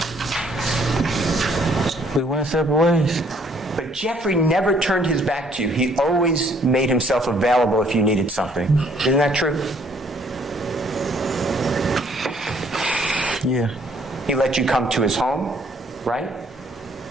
We went separate ways. But Jeffrey never turned his back to you. He always made himself available if you needed something. Isn't that true? Yeah. He let you come to his home, right?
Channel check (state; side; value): normal; both; correlation 0.63